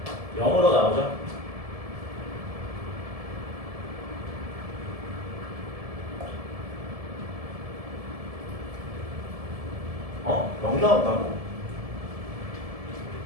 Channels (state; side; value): late; left; 1.7 ms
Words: 0으로 나오죠. 어? 0 나온다고?